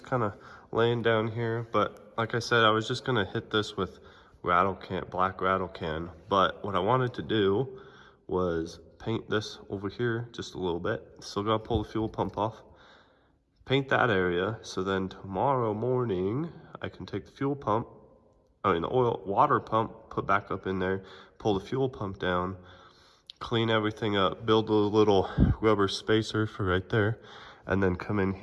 kind of laying down here. But like I said, I was just gonna hit this with black rattle can. But what I wanted to do was paint this over here just a little bit. Still gotta pull the fuel pump off. Paint that area, so then tomorrow morning I can take the fuel pump, the water pump, put back up in there, pull the fuel pump down, clean everything up, build a little rubber spacer for right there, and then come in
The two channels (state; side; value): identical; both; correlation 1.00